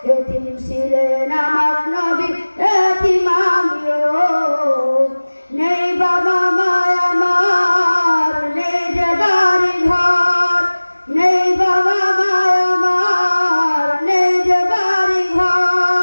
এতিম ছিলেন আমার নবী, এতিম আমিও। নেই বাবা মায় আমার, নেই যে বাড়ি ঘর, নেই বাবা মায় আমার, নেই যে বাড়ি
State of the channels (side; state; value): both; inverted; correlation -1.00